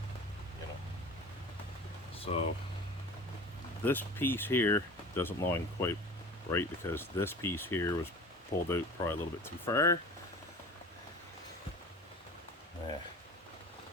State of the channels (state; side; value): normal; both; correlation 0.38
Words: You know. So this piece here doesn't line quite right because this piece here was pulled out probably a little bit too far. Yeah.